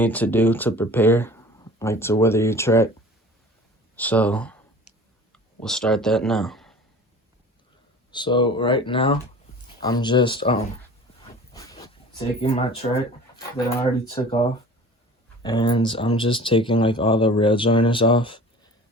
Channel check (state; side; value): normal; both; correlation 0.42